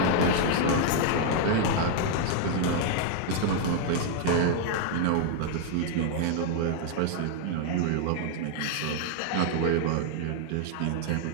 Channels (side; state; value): both; different; correlation 0.00